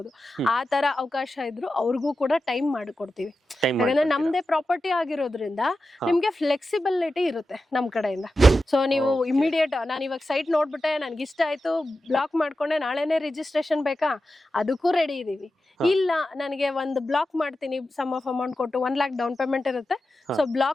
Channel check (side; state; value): both; normal; correlation 0.92